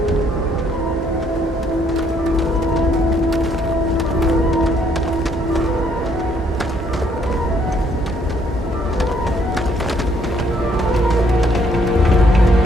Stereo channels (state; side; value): normal; both; correlation 0.68